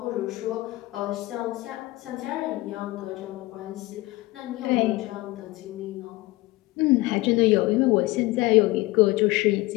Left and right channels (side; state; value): right; quieter; 19.9 dB